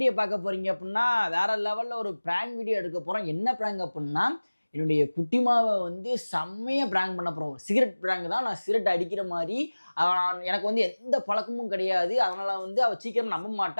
பார்க்க போறீங்க அப்படின்னா வேற லெவல்ல ஒரு பிராங்க் வீடியோ எடுக்க போறோம். என்ன பிராங்க் அப்படின்னா என்னுடைய குட்டிமாவை வந்து செம்மையா பிராங்க் பண்ண போறோம். சிகரெட் பிராங்க் தான். நான் சிகரெட் அடிக்கிற மாதிரி எனக்கு வந்து எந்த பழக்கமும் கிடையாது. அதனால வந்து அவள் சீக்கிரம் நம்ப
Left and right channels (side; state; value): both; inverted; correlation -1.00